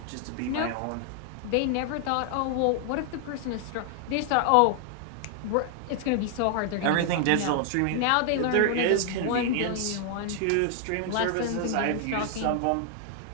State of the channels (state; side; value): different; both; correlation 0.00